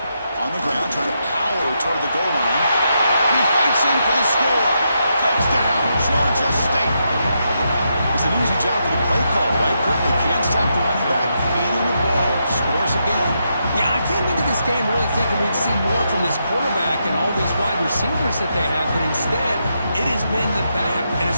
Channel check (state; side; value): inverted; both; correlation -0.82